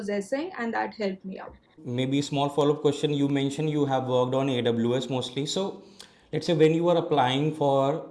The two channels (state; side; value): identical; both; correlation 1.00